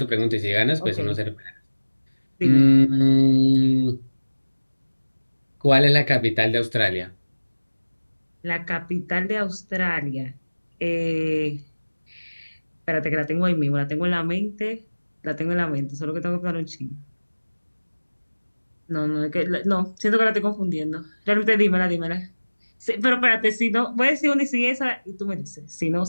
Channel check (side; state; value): both; inverted; correlation -1.00